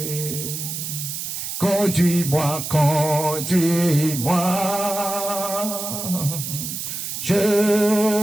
Conduis-moi, conduis-moi. Je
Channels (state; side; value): noise; right; hiss, 5 dB below the sound